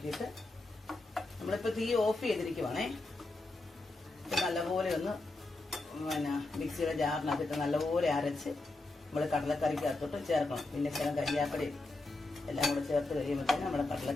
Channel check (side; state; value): right; quieter; 3.1 dB